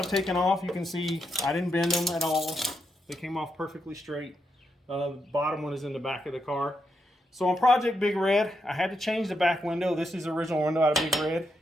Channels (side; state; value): both; normal; correlation 0.82